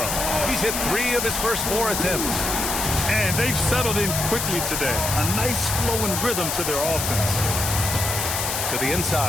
He's hit 3 of his first 4 attempts. And they've settled in quickly today. A nice flow and rhythm to their offense. To the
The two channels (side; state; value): left; noise; hiss, 2 dB below the sound